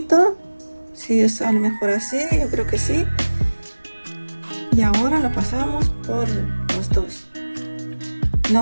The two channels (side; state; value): both; inverted; correlation -1.00